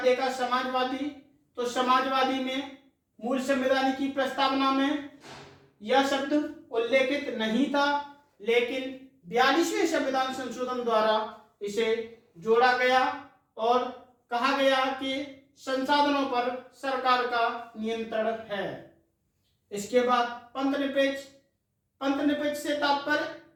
देखा समाजवादी, तो समाजवादी में मूल संविधान की प्रस्तावना में यह शब्द उल्लेखित नहीं था, लेकिन 42वें संविधान संशोधन द्वारा इसे जोड़ा गया और कहा गया कि संसाधनों पर सरकार का नियंत्रण है। इसके बाद पंथ निरपेक्ष से तात्पर्य,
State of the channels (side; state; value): both; identical; correlation 1.00